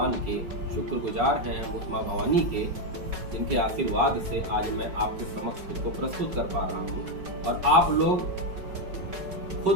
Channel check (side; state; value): left; late; 5.3 ms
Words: के, शुक्रगुजार हैं हम उस माँ भवानी के, जिनके आशीर्वाद से आज मैं आपके समक्ष खुद को प्रस्तुत कर पा रहा हूँ। और आप लोग